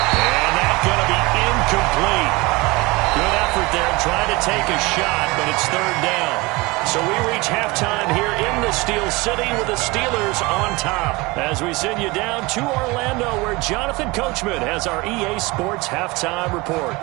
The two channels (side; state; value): left; quieter; 23.8 dB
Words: And that's going to be incomplete. Good effort there trying to take a shot, but it's 3rd down. So we reach halftime here in the Steel City with the Steelers on top. As we send you down to Orlando where Jonathan Coachman has our EA Sports Halftime Report.